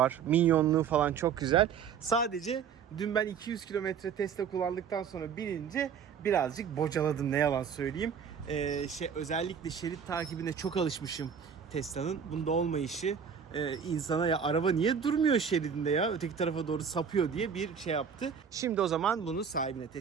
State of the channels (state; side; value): quieter; left; 7.1 dB